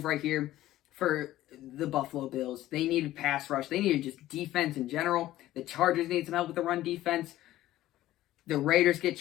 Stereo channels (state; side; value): quieter; right; 14.8 dB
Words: right here for the Buffalo Bills. They needed pass rush. They needed just defense in general. The Chargers need some help with the run defense. The Raiders get